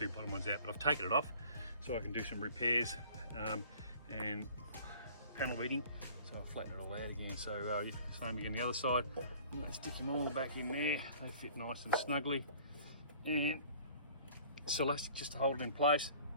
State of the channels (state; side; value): inverted; both; correlation -0.49